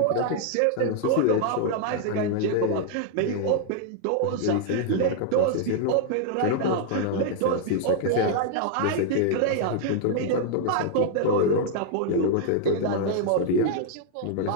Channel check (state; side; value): different; both; correlation 0.00